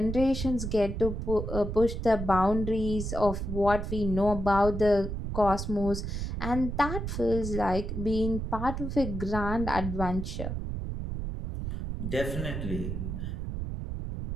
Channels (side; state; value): right; noise; rumble, 4 dB below the sound